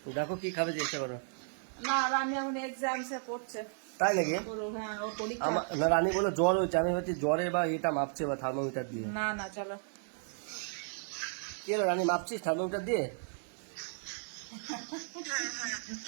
দেখো কি খাবে জিজ্ঞেস করো। না, রানী এখন এক্সামসে পড়ছে। তাই নাকি? হ্যাঁ, ও পরীক্ষা। না, রানী বলো জ্বর হয়েছে, আমি ভাবছি জ্বরে বা এটা মাপছে বা থার্মোমিটার দিয়ে। না না, চলো। কি হলো রানী, মাপছিস থার্মোমিটার দিয়ে?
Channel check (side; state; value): left; silent; digital silence